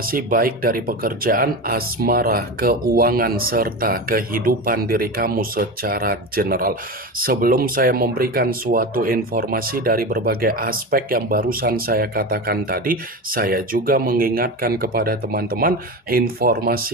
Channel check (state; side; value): normal; both; correlation 0.24